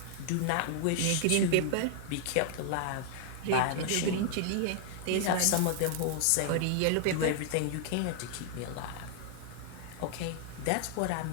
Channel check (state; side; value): different; both; correlation 0.00